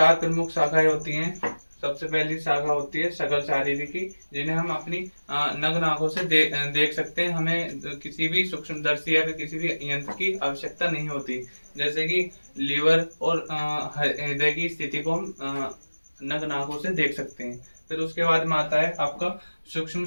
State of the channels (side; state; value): both; inverted; correlation -1.00